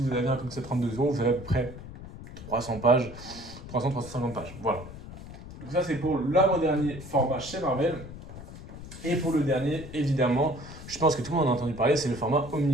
avez un comics à 32 euros, vous avez à peu près 300 pages, 300-350 pages. Voilà. Donc ça, c'est pour l'avant-dernier format chez Marvel. Et pour le dernier, évidemment, je pense que tout le monde en a entendu parler, c'est le format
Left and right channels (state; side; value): noise; left; rumble, 14 dB below the sound